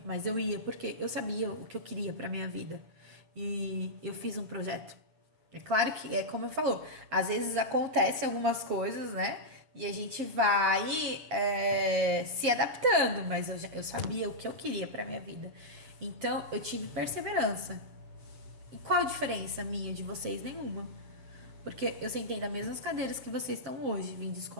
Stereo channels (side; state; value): left; late; 7.3 ms